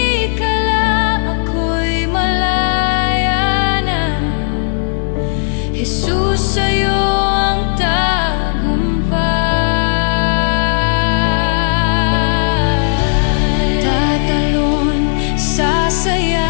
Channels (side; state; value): right; silent; digital silence